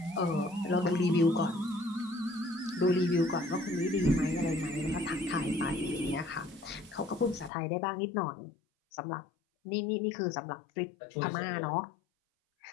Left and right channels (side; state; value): right; drops out; at 7.5 s